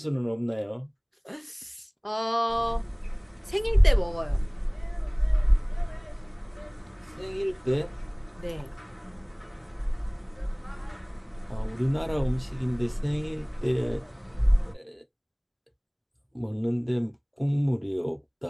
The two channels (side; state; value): both; identical; correlation 1.00